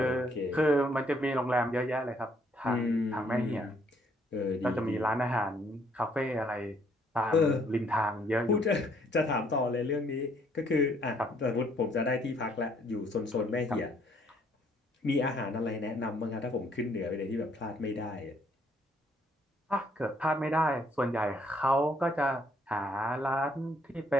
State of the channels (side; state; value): both; normal; correlation 0.67